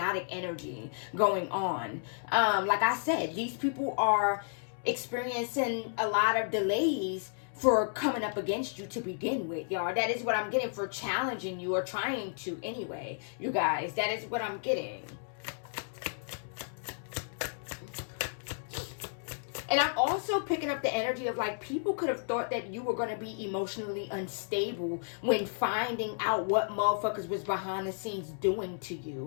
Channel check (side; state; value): right; silent; 56 dB below the other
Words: energy going on. Like I said, these people are experiencing a lot of delays for coming up against you to begin with, y'all. That is what I'm getting, for challenging you, or trying to anyway. You guys, that is what I'm getting. And I'm also picking up the energy of, like, people could have thought that you were going to be emotionally unstable when finding out what motherfuckers was behind the scenes doing to